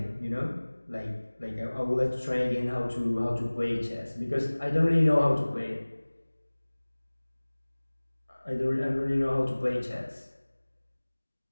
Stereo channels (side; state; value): both; inverted; correlation -1.00